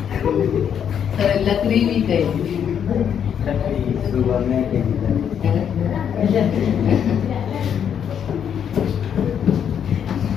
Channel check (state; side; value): quieter; right; 8.4 dB